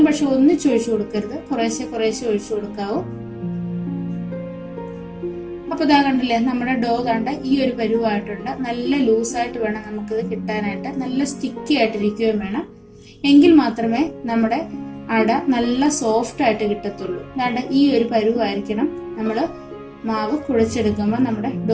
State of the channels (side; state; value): both; identical; correlation 1.00